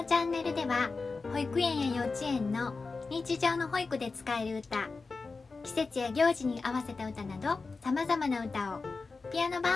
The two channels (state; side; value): quieter; right; 4.1 dB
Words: チャンネルでは保育園や幼稚園の日常の保育で使える歌、季節や行事に合わせた歌など様々な歌をピアノ